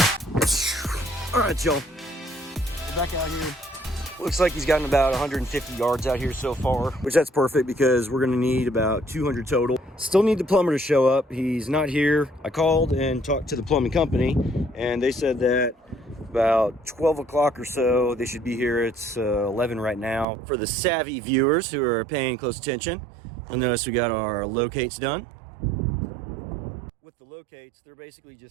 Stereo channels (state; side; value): drops out; left; at 20.2 s